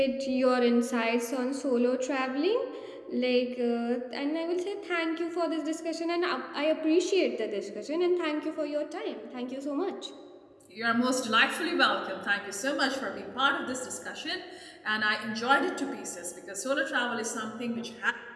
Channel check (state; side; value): identical; both; correlation 1.00